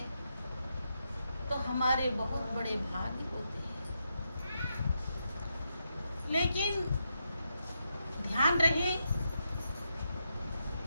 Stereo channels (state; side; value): inverted; both; correlation -0.84